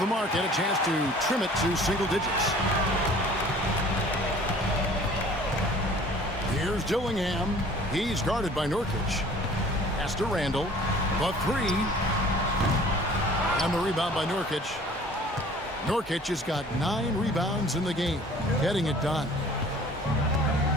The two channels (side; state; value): both; normal; correlation 0.49